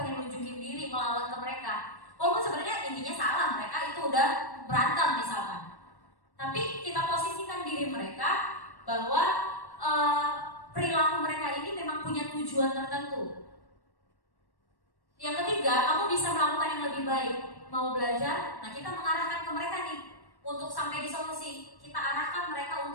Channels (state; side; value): late; right; 1.1 ms